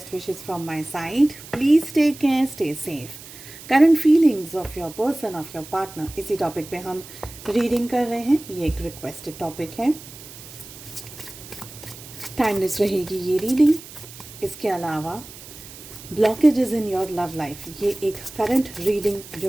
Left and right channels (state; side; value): noise; right; hiss, 16 dB below the sound